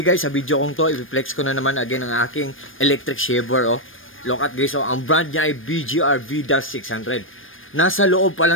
sa video kong to, i-flex ko na naman again ang aking electric shaver. Oh. Look at guys, oh. Ang brand niya ay BGR V-600. Nasa loob pa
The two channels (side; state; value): right; late; 0.59 ms